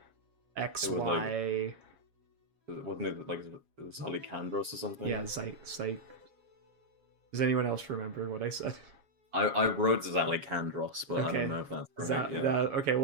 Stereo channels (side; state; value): left; late; 7.3 ms